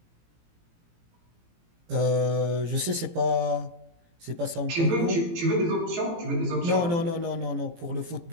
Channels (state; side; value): late; left; 18 ms